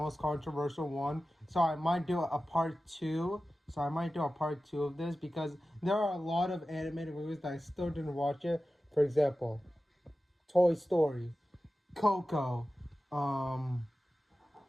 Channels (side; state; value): both; normal; correlation 0.95